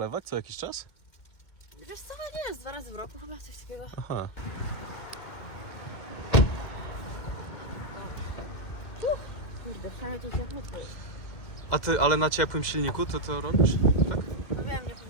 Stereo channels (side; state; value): right; late; 2.1 ms